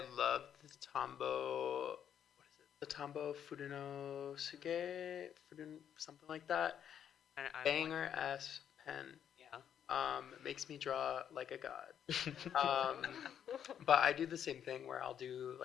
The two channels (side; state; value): right; quieter; 9.1 dB